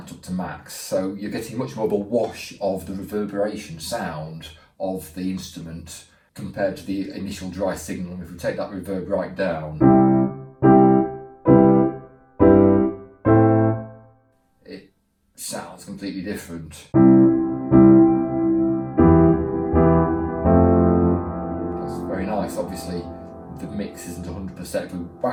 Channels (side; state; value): both; identical; correlation 1.00